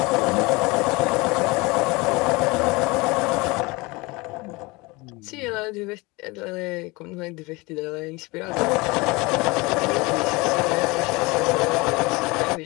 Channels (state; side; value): quieter; right; 24.5 dB